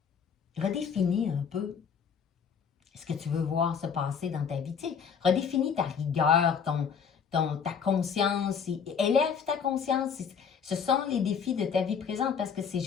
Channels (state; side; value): quieter; right; 6.8 dB